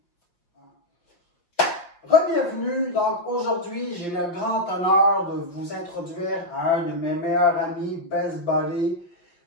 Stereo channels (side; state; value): right; late; 5.7 ms